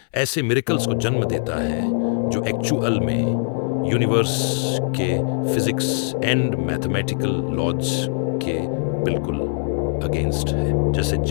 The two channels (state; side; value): silent; right; 64 dB below the other